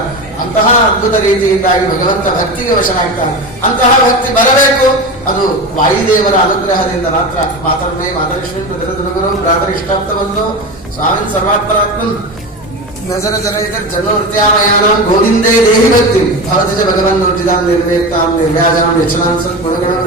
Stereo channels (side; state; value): both; normal; correlation 0.24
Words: ಅಂತಹ ಅದ್ಭುತ ರೀತಿಯಿಂದಾಗಿ ಭಗವಂತ ಭಕ್ತಿಗೆ ವಶನಾಗ್ತಾನೆ. ಅಂತಹ ಭಕ್ತಿ ಬರಬೇಕು, ಅದು ವಾಯುದೇವರ ಅನುಗ್ರಹದಿಂದ ಮಾತ್ರ. ಮಾತರ್ಮೇ ಮಾತರಿಶ್ವೀ ಪ್ರತಿರಗುರು ಪ್ರಾತರಿಷ್ಟಾಪ್ತ ಬಂದು ಸ್ವಾಮಿ ಸರ್ವಾತ್ಮರಾತ್ಮನ್ ನಜರ ಜನ ಇದರ್ ಜನೋತ್ಯಾಮಯಾನಾಂ ಗೋವಿಂದೇ ದೇಹಿ ಭಕ್ತಿ ಭವತಜ ಭಗವನ್ ನೋಟಿದಾಂ ನಿರ್ವೇಕ್ತಾಂ ನಿರ್ವ್ಯಾಜಾಂ ಯಚನಾಂ ಸತ್ ಗುಣಗಣ